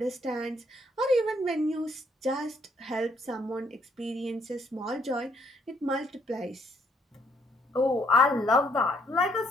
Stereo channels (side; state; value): both; normal; correlation 0.69